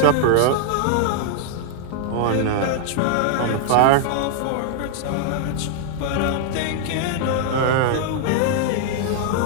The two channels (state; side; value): different; both; correlation 0.00